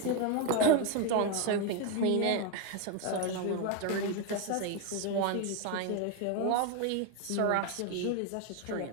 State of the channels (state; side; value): different; both; correlation 0.02